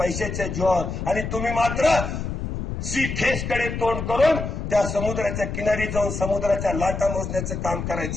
जीवावर. आणि तुम्ही मात्र सी फेसकडे तोंड करून त्या समुद्राच्या किनारी जाऊन समुद्राच्या लाटा मोजण्याचं काम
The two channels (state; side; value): noise; left; rumble, 5 dB below the sound